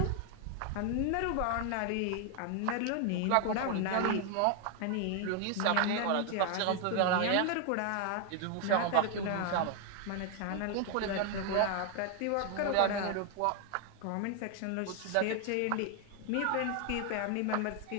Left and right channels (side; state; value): both; different; correlation 0.00